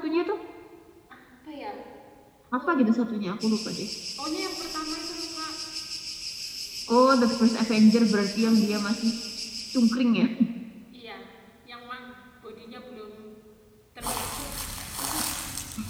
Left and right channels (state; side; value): identical; both; correlation 1.00